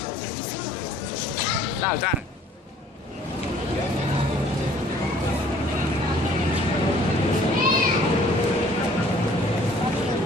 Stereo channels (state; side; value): normal; both; correlation 0.56